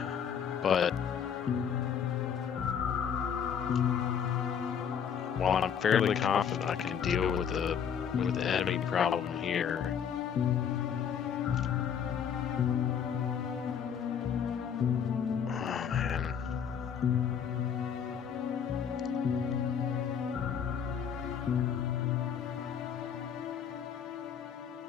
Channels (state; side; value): quieter; right; 7.8 dB